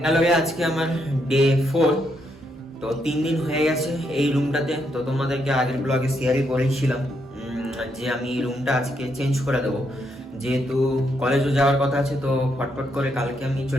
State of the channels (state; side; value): normal; both; correlation 0.77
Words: লগে আজকে আমার ডে 4। তো 3 দিন হয়ে গেছে এই রুমটাতে। তো তোমাদেরকে আগের ব্লগে শেয়ারই করেছিলাম যে আমি এই রুমটা আজকে চেঞ্জ করে দেবো, যেহেতু কলেজও যাওয়ার কথা আছে। তো ফটফট করে কালকে আমি